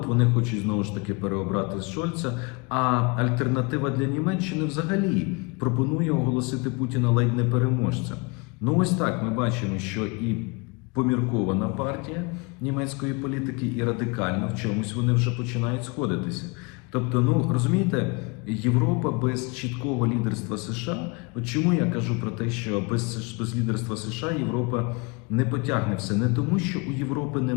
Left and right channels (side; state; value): right; quieter; 29.3 dB